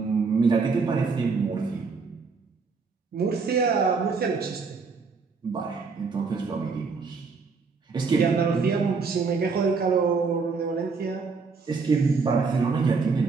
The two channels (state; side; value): quieter; left; 4.8 dB